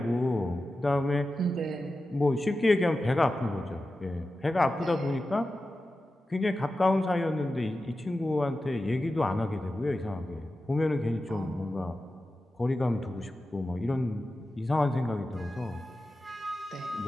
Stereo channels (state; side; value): normal; both; correlation 0.93